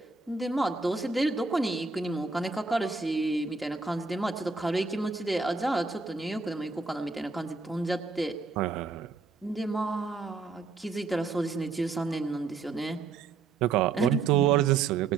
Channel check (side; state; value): left; quieter; 4.4 dB